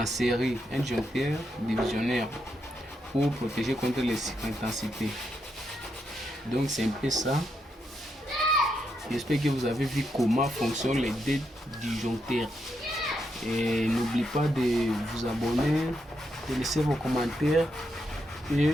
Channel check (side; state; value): both; normal; correlation 0.81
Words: série, un disjoncteur divisionnaire, pour protéger contre les intensités. Donc c'est un peu ça. J'espère que vous avez vu comment fonctionnent les deux disjoncteurs. Et n'oubliez pas de vous abonner, de laisser vos commentaires et